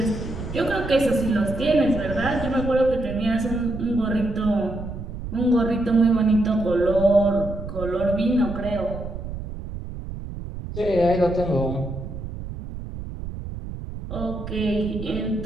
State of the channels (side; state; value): right; noise; rumble, 9 dB below the sound